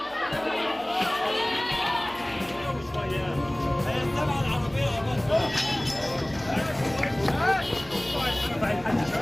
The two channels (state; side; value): noise; right; hum, 22 dB below the sound